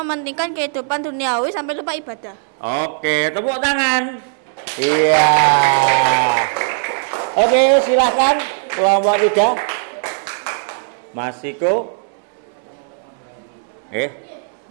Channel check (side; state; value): left; silent; 67 dB below the other